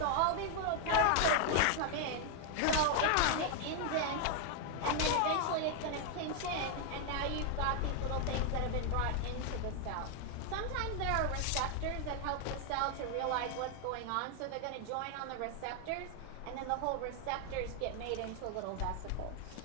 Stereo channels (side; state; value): both; different; correlation 0.00